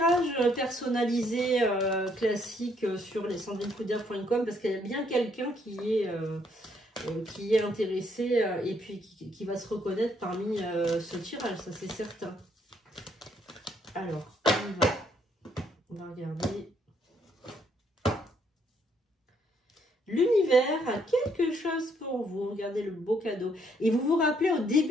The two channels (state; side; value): normal; both; correlation 0.70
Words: personnalisé classique sur les sandrinecoudert.com parce qu'il y a bien quelqu'un qui est intéressé et puis qui va se reconnaître parmi ce tirage. Ça, c'est certain. Alors, on va... On va regarder. L'univers a quelque chose pour vous. Regardez le beau cadeau. Et vous vous rappelez, au